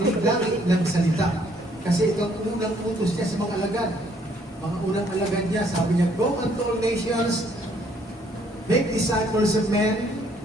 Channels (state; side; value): normal; both; correlation 0.65